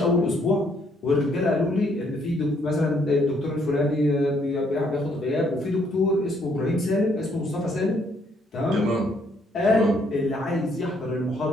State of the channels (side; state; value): both; normal; correlation 0.69